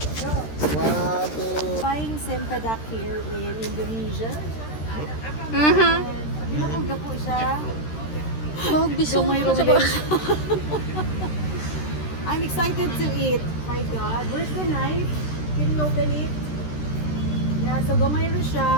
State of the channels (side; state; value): right; late; 13 ms